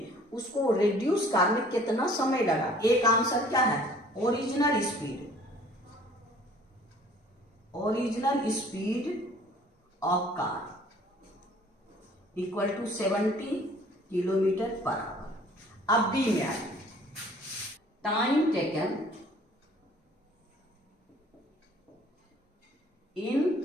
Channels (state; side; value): normal; both; correlation 0.54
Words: उसको रिड्यूस करने कितना समय लगा। एक आंसर क्या है, original speed of car equal to 70 kilometre per hour. अब बी में आइए, time taken in